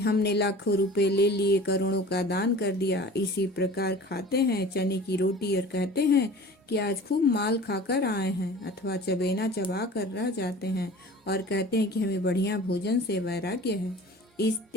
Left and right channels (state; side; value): normal; both; correlation 0.42